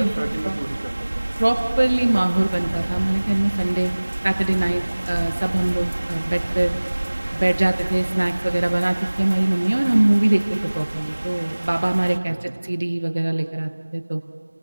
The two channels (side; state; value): both; inverted; correlation -1.00